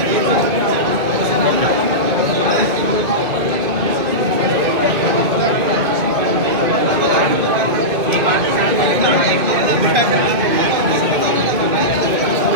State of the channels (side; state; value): left; late; 2.2 ms